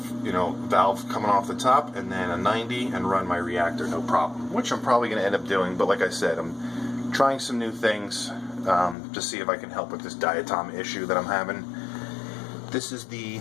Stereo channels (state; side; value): drops out; right; at 9.0 s